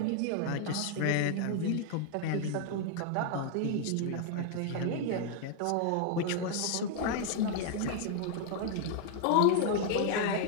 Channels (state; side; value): different; both; correlation 0.00